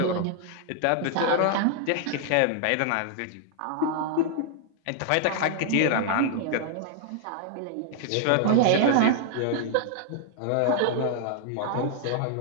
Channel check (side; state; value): both; different; correlation 0.00